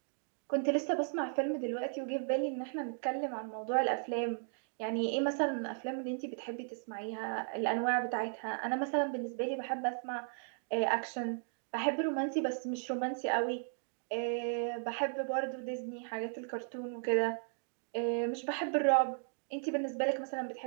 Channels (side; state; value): left; silent; digital silence